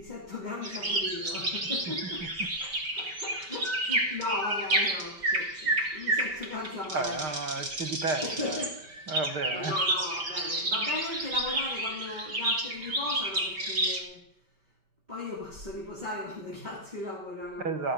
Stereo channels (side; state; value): left; late; 5.1 ms